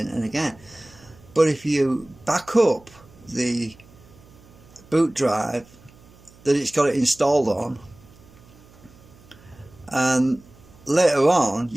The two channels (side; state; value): right; noise; hum, 25 dB below the sound